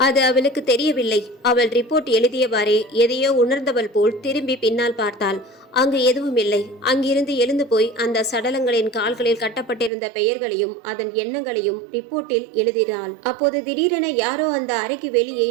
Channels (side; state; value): left; drops out; at 9.9 s